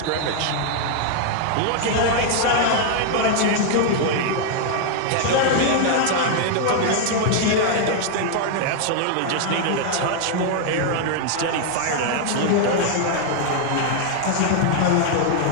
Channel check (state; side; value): different; both; correlation 0.00